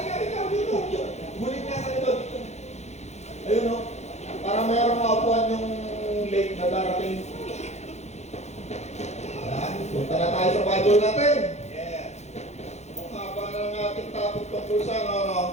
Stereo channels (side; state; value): right; late; 0.32 ms